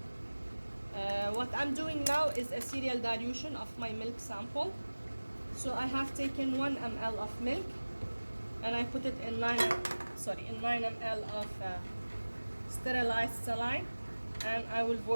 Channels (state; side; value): inverted; both; correlation -1.00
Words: What I'm doing now is a serial dilution of my milk sample. So I have taken 1 ml of milk and I put it in 9 ml of sterilized saline, and I will